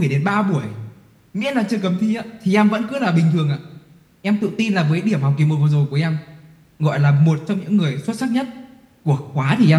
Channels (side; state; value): both; identical; correlation 1.00